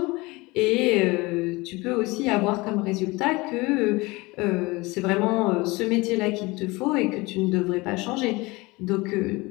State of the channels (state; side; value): quieter; right; 23.1 dB